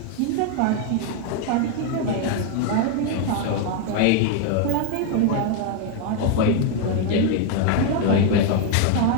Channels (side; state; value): both; different; correlation 0.01